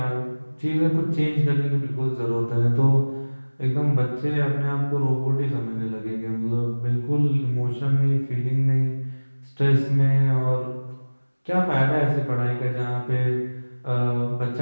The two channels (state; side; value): inverted; both; correlation -1.00